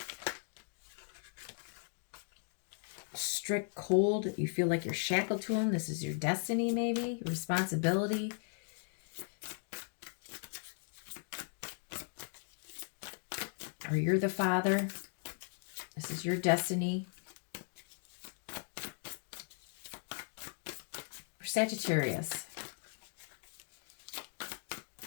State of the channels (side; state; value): right; silent; 52 dB below the other